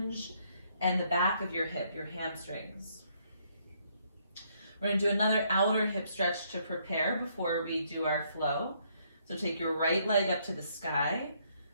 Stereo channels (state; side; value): inverted; both; correlation -0.70